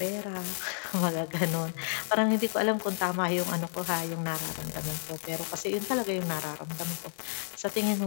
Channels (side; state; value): right; silent; digital silence